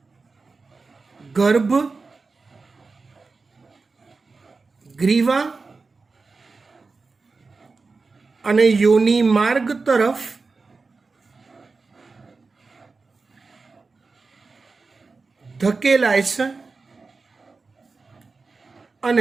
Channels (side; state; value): left; quieter; 4.1 dB